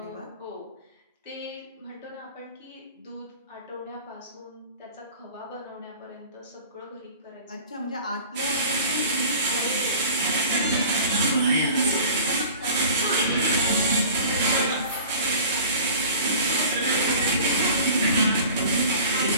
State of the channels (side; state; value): both; inverted; correlation -0.43